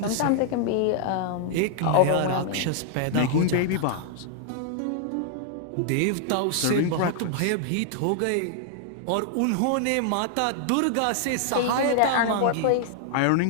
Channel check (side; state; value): both; different; correlation -0.01